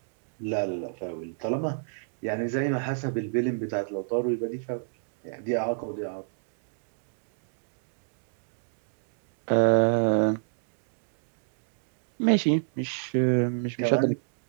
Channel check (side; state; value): left; silent; digital silence